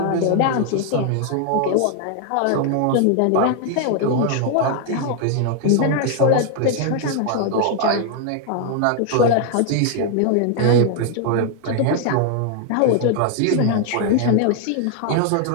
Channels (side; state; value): both; different; correlation 0.00